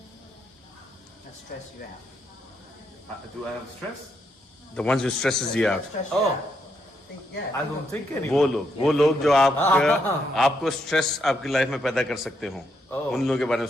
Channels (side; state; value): both; normal; correlation 0.78